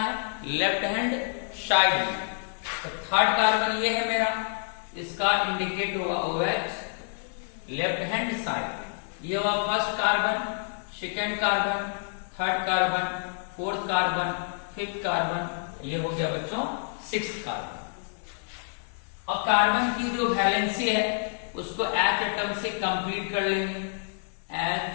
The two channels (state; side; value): silent; right; 58 dB below the other